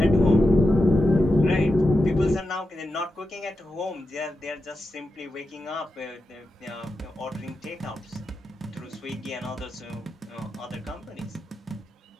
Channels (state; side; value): normal; both; correlation 0.89